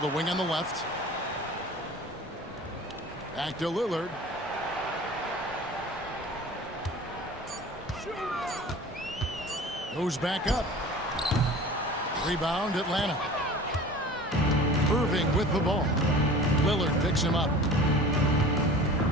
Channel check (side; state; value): both; normal; correlation 0.41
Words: wing on the left. Back to Lillard. Goes back up. Rebound, Atlanta. Irving with the ball. Lillard picks him up.